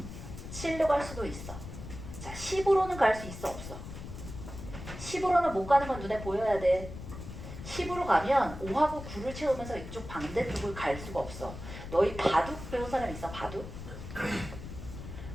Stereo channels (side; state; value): left; noise; rumble, 10 dB below the sound